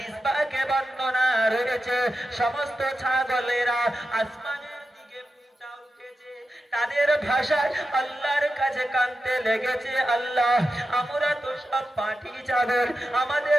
পাকে বর্ণনা রয়েছে, সমস্ত ছাগলেরা আসমানের দিকে উঠা উঠেছে, তাদের ভাষায় আল্লাহর কাছে কাঁদতে লেগেছে, আল্লাহ, আমরা তো সব পাঠি ছাগল,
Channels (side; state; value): both; normal; correlation 0.90